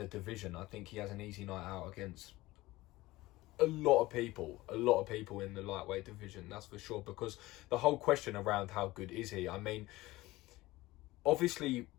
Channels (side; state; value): right; quieter; 18.8 dB